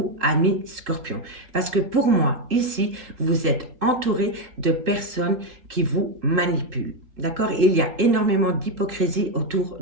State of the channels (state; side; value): late; left; 3.6 ms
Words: amis Scorpions. Parce que pour moi, ici, vous êtes entouré de personnes qui vous manipulent. D'accord? Il y a énormément d'hypocrisie autour